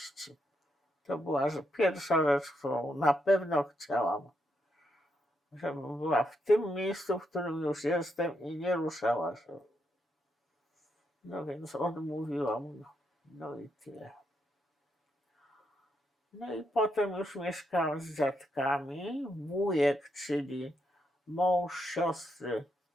To była pierwsza rzecz, którą na pewno chciałam, żebym była w tym miejscu, w którym już jestem i nie ruszała się. No więc odmówiłam, no i tyle. No i potem już mieszkałam z dziadkami. Wujek, czyli mąż siostry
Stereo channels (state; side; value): normal; both; correlation 0.80